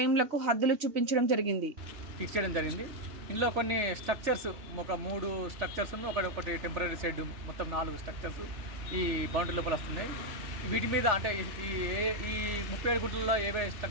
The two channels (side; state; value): left; late; 3.4 ms